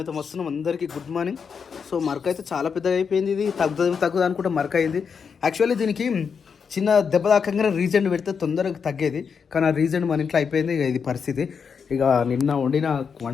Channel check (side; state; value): right; quieter; 6.2 dB